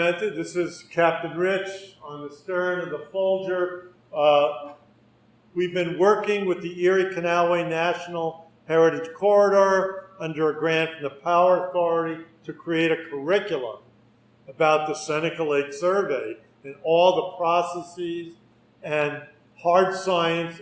this is Captain Rich on the stern of the Folger. We've been working with the Erie Canalway National Heritage Corridor under a grant from the Power Authority to create a curriculum about the Seneca Lake Survey and all the processes and hard science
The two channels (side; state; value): both; identical; correlation 1.00